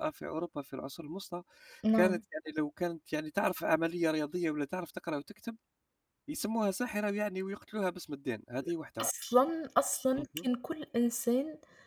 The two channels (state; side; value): identical; both; correlation 1.00